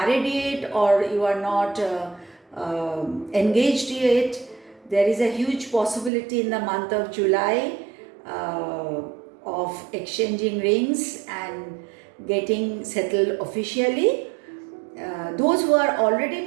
yet, or you are not engaged yet. There is a huge possibility in the month of July of exchanging rings and getting settled officially. Those who are already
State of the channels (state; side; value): drops out; left; at 6.1 s